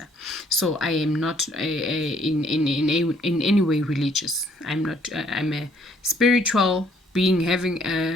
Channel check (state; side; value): normal; both; correlation 0.64